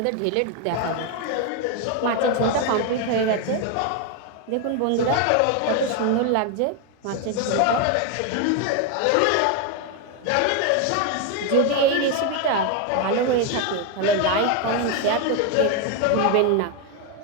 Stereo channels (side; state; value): both; different; correlation 0.01